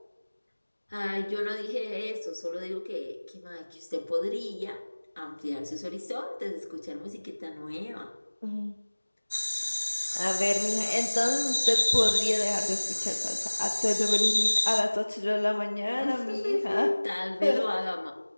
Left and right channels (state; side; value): inverted; both; correlation -1.00